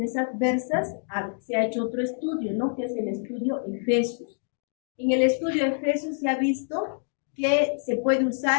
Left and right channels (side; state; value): right; silent; 61 dB below the other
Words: adversas, se ha hecho otro estudio, ¿no? Que es el estudio EFESUS. En el estudio EFESUS se ha visto que se puede